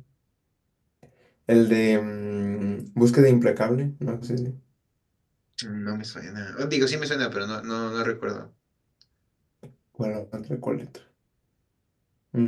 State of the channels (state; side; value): identical; both; correlation 1.00